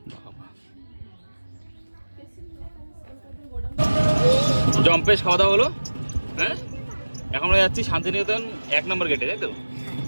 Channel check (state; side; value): inverted; both; correlation -1.00